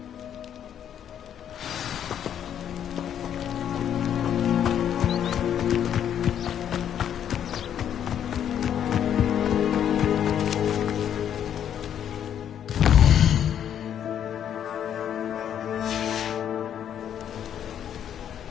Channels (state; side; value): quieter; right; 9.5 dB